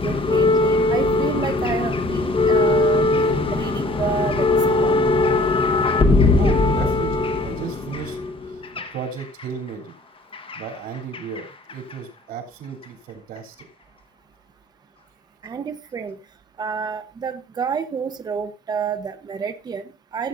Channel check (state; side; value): normal; both; correlation 0.53